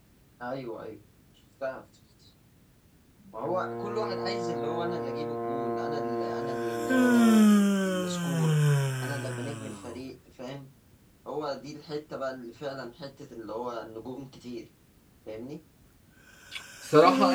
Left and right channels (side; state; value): both; identical; correlation 1.00